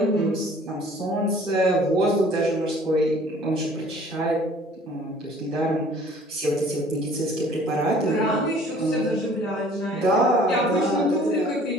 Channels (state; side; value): normal; both; correlation 0.52